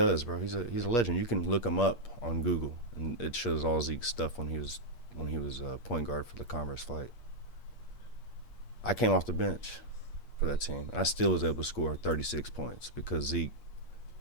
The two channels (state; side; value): late; right; 8.4 ms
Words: bro. He's a legend. You can look him up on Google, and it shows all Zeke's stuff when he was point guard for the Converse flight. I came off the bench for that team, and I still was able to score 36 points because Zeke,